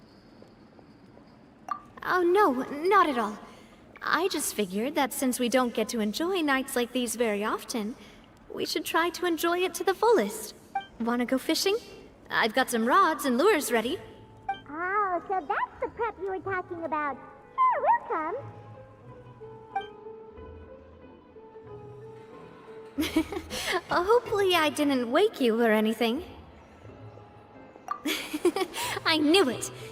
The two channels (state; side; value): identical; both; correlation 1.00